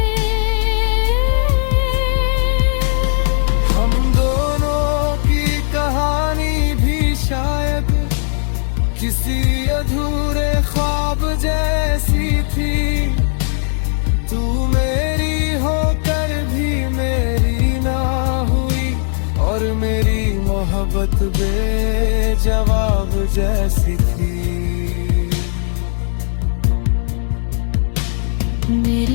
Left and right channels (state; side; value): silent; right; 68 dB below the other